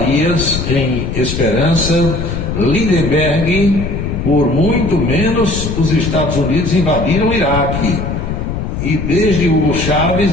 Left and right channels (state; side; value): noise; left; rumble, 4 dB below the sound